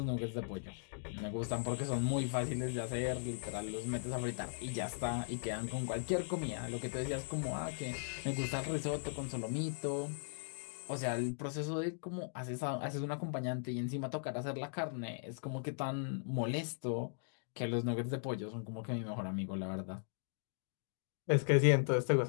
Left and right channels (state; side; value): silent; right; digital silence